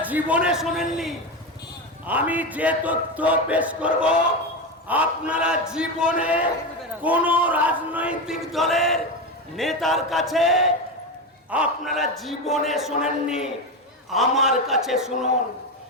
জীবনে শোনেননি, আমি যে তথ্য পেশ করব আপনারা জীবনে কোন রাজনৈতিক দলের নেতার কাছে আপনারা জীবনে শোনেননি, আমার কাছে শুনুন।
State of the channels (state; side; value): normal; both; correlation 0.16